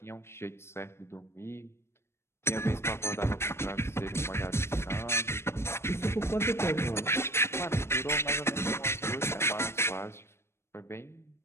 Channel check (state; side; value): late; right; 0.12 ms